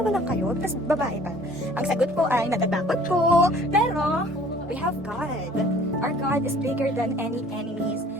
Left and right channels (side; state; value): both; normal; correlation 0.52